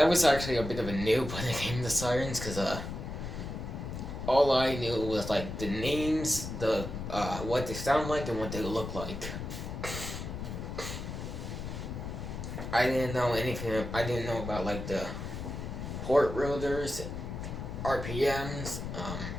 was actually a bit of a noob when it came to sirens, because all I knew was the names, what they sound like, and what they look like. I didn't know anything. I didn't know about the port rotors, RPMs,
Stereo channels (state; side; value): noise; left; rumble, 6 dB below the sound